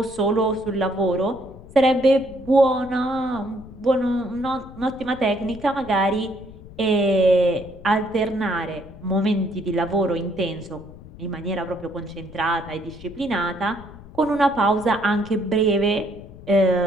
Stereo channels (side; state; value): left; noise; rumble, 18 dB below the sound